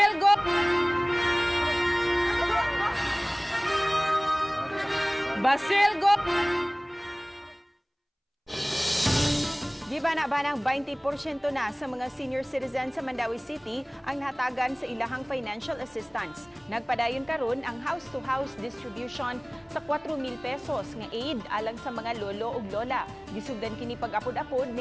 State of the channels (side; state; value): both; identical; correlation 1.00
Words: Basilgo! Gibana-banang 20% na sa mga senior citizens sa Mandawi City ang nahatagan sa ilahang financial assistance. Nagpadayon karon ang house-to-house distribution sa 4,000 pesos nga aid alang sa mga lolo ug lola. Gisugdan kini pag-apod-apod